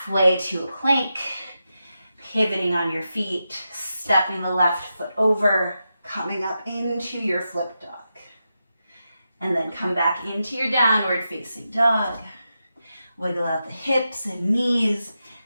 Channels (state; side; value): inverted; both; correlation -0.89